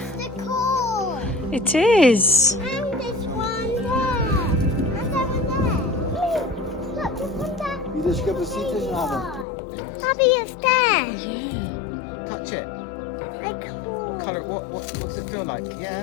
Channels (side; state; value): right; drops out; at 9.5 s